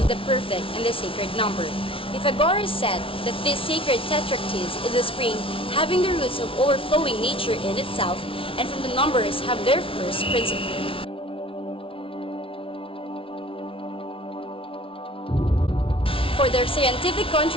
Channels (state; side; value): late; right; 0.26 ms